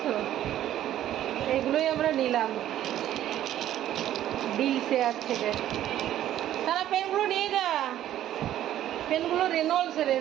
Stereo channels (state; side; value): quieter; left; 12.3 dB